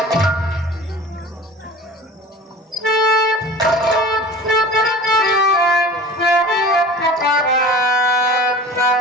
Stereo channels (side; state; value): both; normal; correlation 0.39